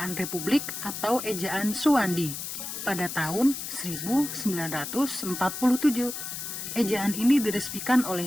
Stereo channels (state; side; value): noise; left; hiss, 6 dB below the sound